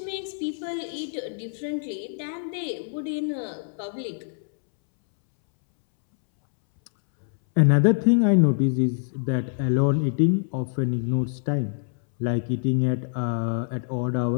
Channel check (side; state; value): right; silent; 62 dB below the other